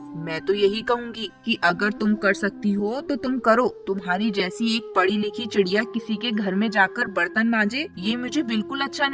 मैं तो यही कहूँगी कि अगर तुम कर सकती हो तो तुम करो। तुम्हारी जैसी एक पढ़ी लिखी चिड़िया किसी के घर में जाकर बर्तन मांजे, ये मुझे बिल्कुल अच्छा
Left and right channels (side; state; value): both; identical; correlation 1.00